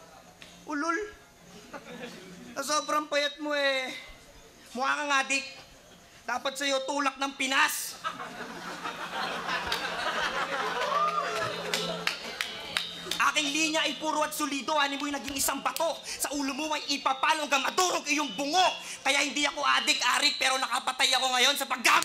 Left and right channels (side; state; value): both; identical; correlation 1.00